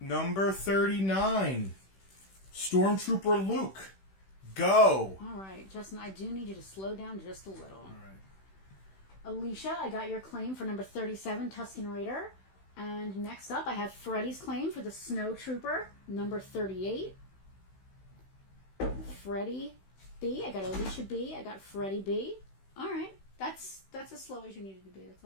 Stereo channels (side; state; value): right; late; 16 ms